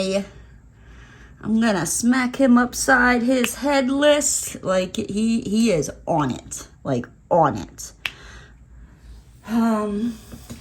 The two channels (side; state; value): both; identical; correlation 1.00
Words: I'm gonna smack him upside his head list, like, he is on it, like, on it.